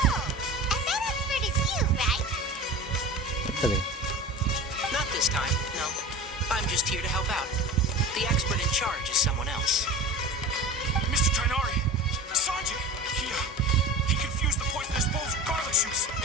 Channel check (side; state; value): both; normal; correlation 0.33